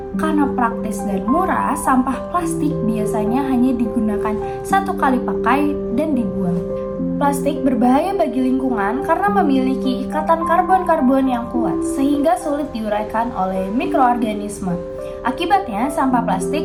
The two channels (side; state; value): both; identical; correlation 1.00